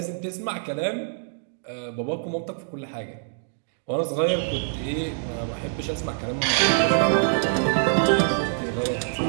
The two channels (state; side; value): silent; left; digital silence